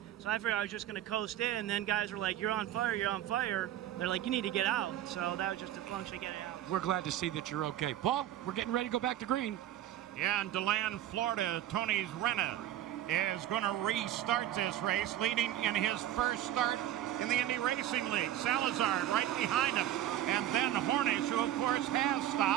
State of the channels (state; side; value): quieter; left; 12.5 dB